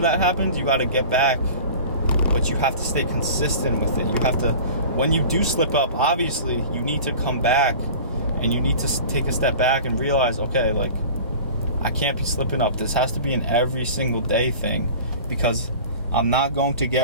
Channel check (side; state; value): both; inverted; correlation -0.39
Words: that happens, you got to get back, but you have to stay consistent with it. You have to, when you do slip up, obviously you need to come back, and you need to take a step back and realize, okay, like, I can't be slipping up. This has to be an every single day thing, because I'm not going to